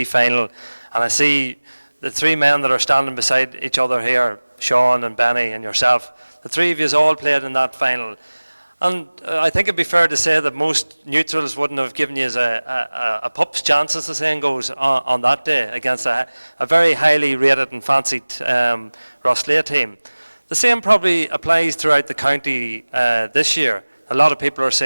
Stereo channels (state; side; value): inverted; both; correlation -1.00